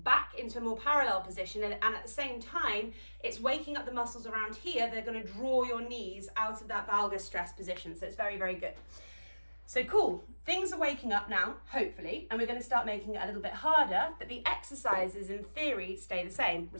into a more parallel position, and at the same time, it's waking up the muscles around here. They're going to draw your knees out of that valgus stress position. So it's very, very good. So cool, things are waking up now, hopefully, and we're going to start making it a little bit harder, but the exercises in theory stay the same. I'm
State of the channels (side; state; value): both; inverted; correlation -1.00